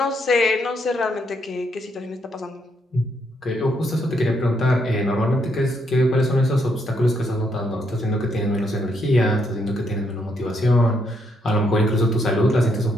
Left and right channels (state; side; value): normal; both; correlation 0.75